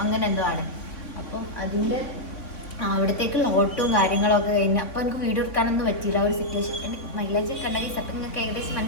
അങ്ങനെ എന്തോ ആണ്. അപ്പം അതിൻ്റെ അവിടത്തേക്കുള്ള ഓട്ടവും കാര്യങ്ങളൊക്കെ കഴിഞ്ഞ് അപ്പോൾ എനിക്ക് വീഡിയോ എടുക്കാനൊന്നും പറ്റിയില്ല. ഒരു സിറ്റുവേഷൻ മൈലേജ് കണ്ടെങ്കിൽ അപ്പം നിങ്ങൾക്ക് ഏകദേശം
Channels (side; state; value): right; late; 3.5 ms